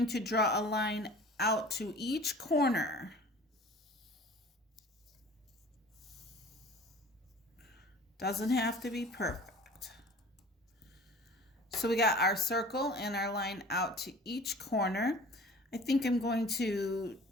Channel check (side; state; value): both; normal; correlation 0.45